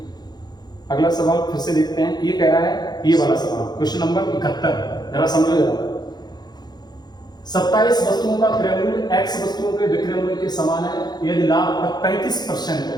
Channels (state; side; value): late; right; 0.20 ms